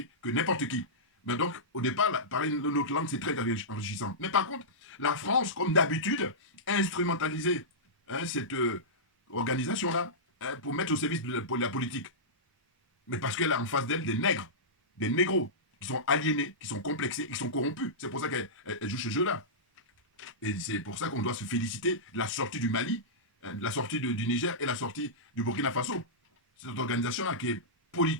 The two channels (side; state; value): both; normal; correlation -0.15